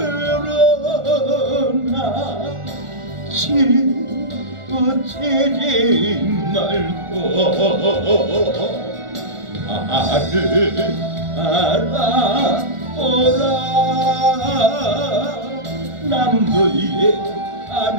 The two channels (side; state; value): left; late; 1.4 ms